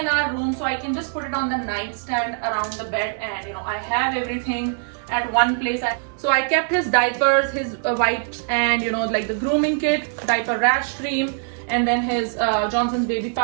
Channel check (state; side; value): silent; left; digital silence